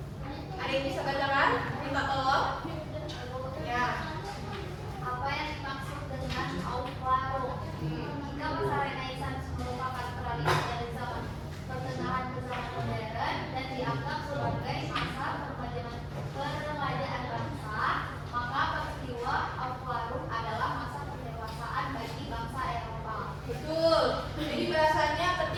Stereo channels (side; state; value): both; identical; correlation 1.00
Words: Ada yang bisa bacakan? Minta tolong. Ya. Apa yang dimaksud dengan Aufklärung? Jika masa Renaissance merupakan peralihan dari zaman pertengahan ke zaman